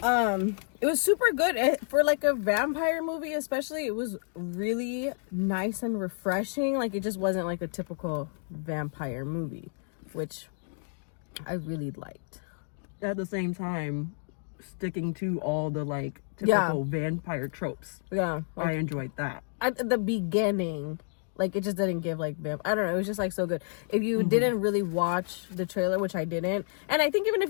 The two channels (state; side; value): silent; right; digital silence